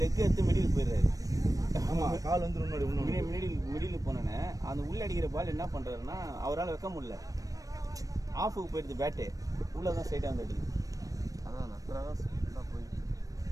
லெக் எடுத்து மிடில் போயிடுறாரு. ஆமாம், கால் வந்து முன்னாடி மிடில் போனேன்னு அந்த உள்ள அடிக்கிற பால் என்ன பண்ணுறாருன்னா அவரால் வைக்க முடியல. ஆஃபுக்கு போயிடுது பேட்டு. உள்ளே தான் ஸ்ட்ரைட்டாக வந்து அடிக்குது. அதான் நக்கராக ஸ்பீடாக போயிடுது.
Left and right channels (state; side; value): late; left; 0.17 ms